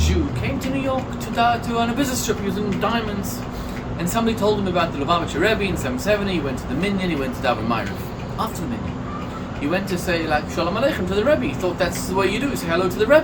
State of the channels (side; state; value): both; identical; correlation 1.00